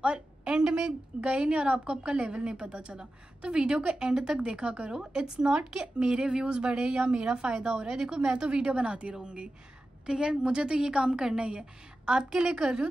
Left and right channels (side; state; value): both; normal; correlation 0.93